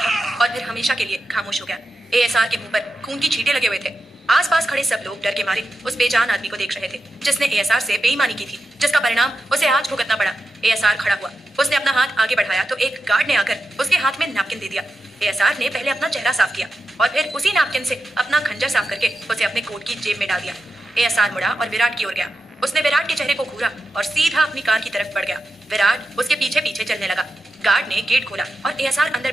और फिर हमेशा के लिए खामोश हो गया। एएसआर के मुंह पर खून की छींटे लगे हुए थे। आसपास खड़े सब लोग डर के मारे उस बेजान आदमी को देख रहे थे जिसने एएसआर से बेईमानी की थी, जिसका परिणाम उसे आज भुगतना पड़ा। एएसआर खड़ा हुआ। उसने अपना हाथ आगे बढ़ाया तो एक गार्ड ने आकर उसके हाथ में नैपकिन दे दिया। एएसआर ने पहले अपना चेहरा साफ किया और फिर उसी नैपकिन से अपना खंजर साफ करके उसे अपने कोट की जेब में डाल दिया। एएसआर मुड़ा और विराट की ओर गया। उसने विराट के चेहरे को घूरा और सीधा अपनी कार की तरफ बढ़ गया। विराट उसके पीछे पीछे चलने लगा। गार्ड ने गेट खोला और एएसआर अंदर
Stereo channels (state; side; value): normal; both; correlation 0.90